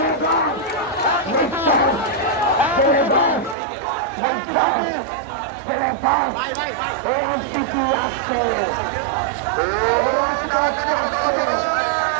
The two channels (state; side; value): drops out; left; at 3.6 s